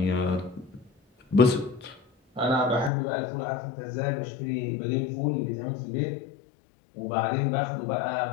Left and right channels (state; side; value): drops out; right; at 2.9 s